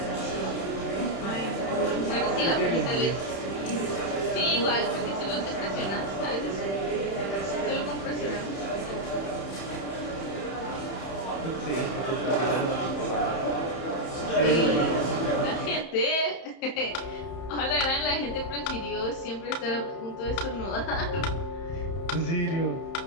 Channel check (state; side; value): late; right; 31 ms